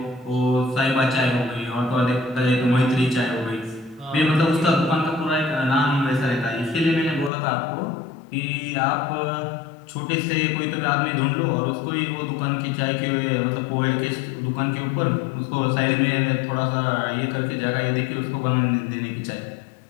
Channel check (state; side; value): drops out; right; at 7.3 s